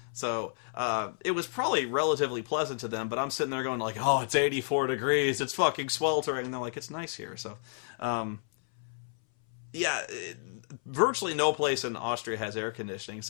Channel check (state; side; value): silent; right; 57 dB below the other